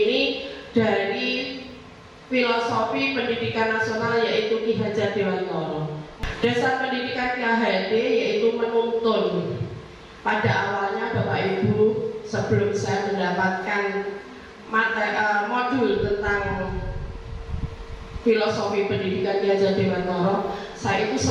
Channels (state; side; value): identical; both; correlation 1.00